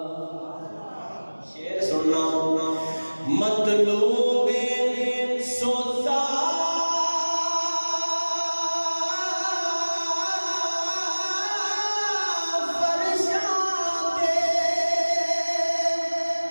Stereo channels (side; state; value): both; inverted; correlation -1.00